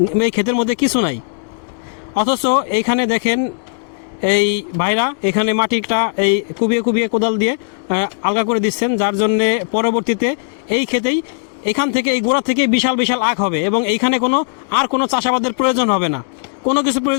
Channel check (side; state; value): right; silent; digital silence